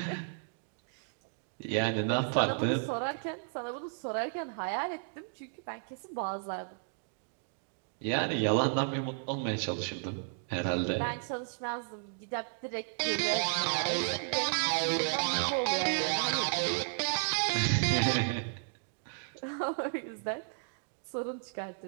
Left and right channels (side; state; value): left; silent; digital silence